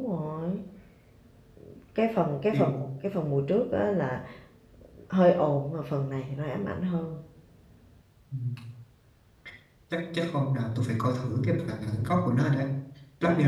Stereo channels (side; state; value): both; identical; correlation 1.00